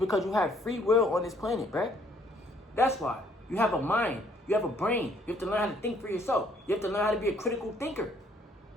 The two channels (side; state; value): both; normal; correlation 0.64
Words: you have free will on this planet, bruh. That's why. You have a mind. You have a brain. You have to learn how to think for yourself. You have to learn how to be a critical thinker.